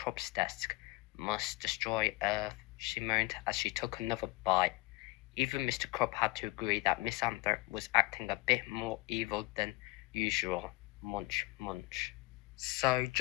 desk. Must destroy Earth, she moaned as she took another bite. Even Mr. Crump had to agree that Miss Anthorpe was acting a bit more evil than usual. Munch, munch. So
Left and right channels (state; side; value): quieter; right; 22.2 dB